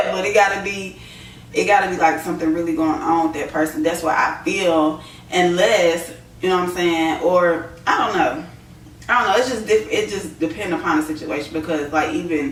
but it gotta be like something really going on with that person. That's what I feel. Unless, you know what I'm saying, or I don't know. It's just it just depends upon the situation, because like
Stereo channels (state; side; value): identical; both; correlation 1.00